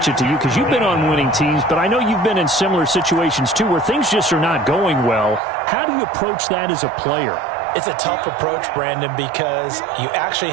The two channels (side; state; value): left; drops out; at 5.4 s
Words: it to you because you've been on winning teams, but I know you've been in similar situations too where things just are not going well. How do you approach that as a player? It's a tough approach, Brandon, because you actually